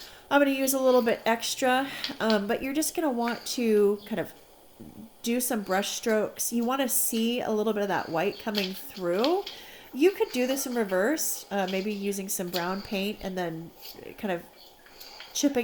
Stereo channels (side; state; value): both; identical; correlation 1.00